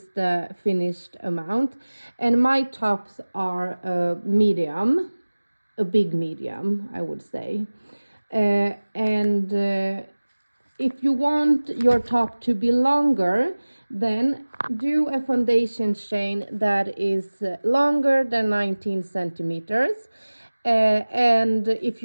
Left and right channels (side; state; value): both; inverted; correlation -1.00